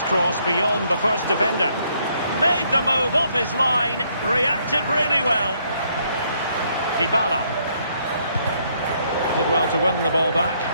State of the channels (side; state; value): both; inverted; correlation -0.70